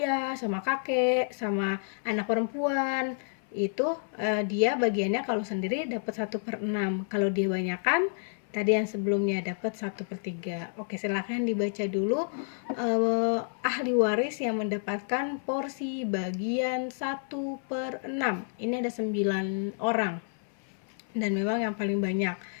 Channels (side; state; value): right; silent; 58 dB below the other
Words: sama kakek, sama anak perempuan, itu dia bagiannya kalau sendiri dapat 1/6. Kalau dia banyakan tadi yang sebelumnya dapat 1/3. Oke, silakan dibaca dulu ahli waris yang mendapatkan porsi bagian 1/6. Ini ada 9 orang dan memang yang paling banyak.